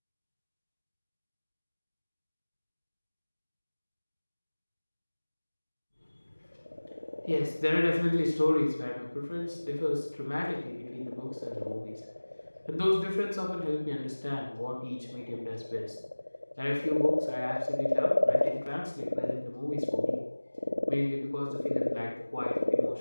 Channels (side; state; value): both; inverted; correlation -1.00